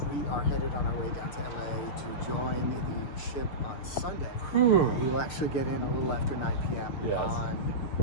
We are headed on our way down to LA to join the ship on Sunday. Whew. We will actually get in a little after 9 p.m. Yes. on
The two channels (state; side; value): late; right; 6.5 ms